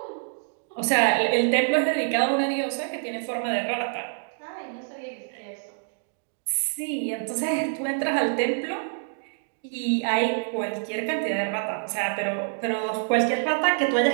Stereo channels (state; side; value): silent; left; digital silence